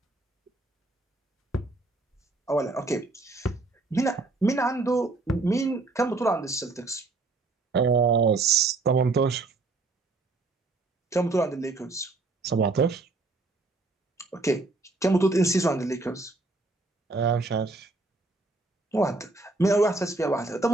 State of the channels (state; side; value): quieter; left; 3.3 dB